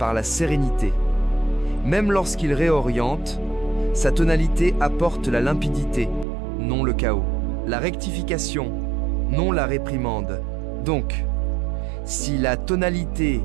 la sérénité. Même lorsqu'il réoriente, sa tonalité apporte la limpidité, non le chaos. La rectification, non la réprimande. Donc, si la tonalité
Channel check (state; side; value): drops out; left; at 6.2 s